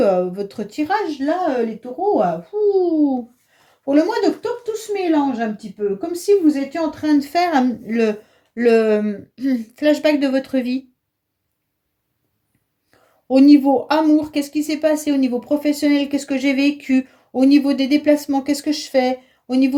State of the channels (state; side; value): identical; both; correlation 1.00